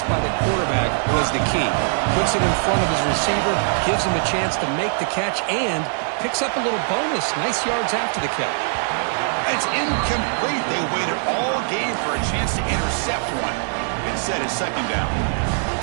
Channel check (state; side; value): silent; left; digital silence